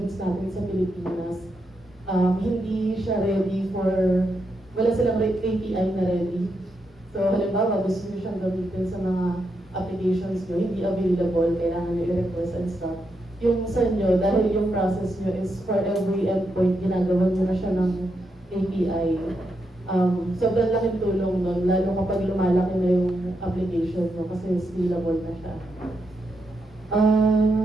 natin sa Pilipinas, hindi siya ready for, wala silang API na ready. So halimbawa, gusto nyo siyang gamitin sa mga applications nyo, hindi available, kailangan nyo i-request and stuff. Yung sa inyo, dahil yung process nyo is for every endpoint, ginagawa nyo na siya ng API. Sobrang laking tulong nun, lalo kapag lumalaki na yung application mo kasi scalable na siya.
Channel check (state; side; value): normal; both; correlation 0.83